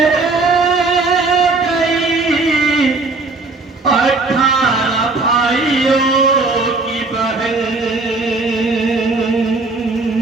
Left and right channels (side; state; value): left; quieter; 3.7 dB